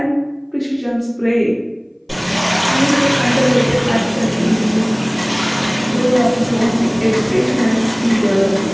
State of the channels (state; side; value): identical; both; correlation 1.00